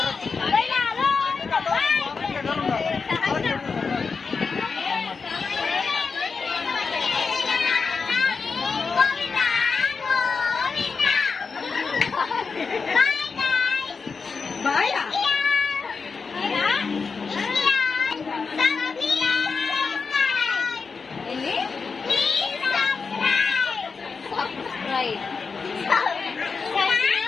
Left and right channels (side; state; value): right; quieter; 5.0 dB